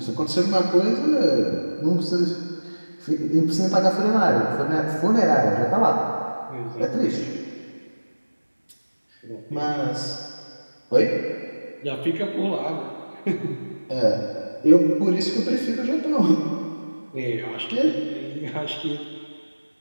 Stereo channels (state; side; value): inverted; both; correlation -1.00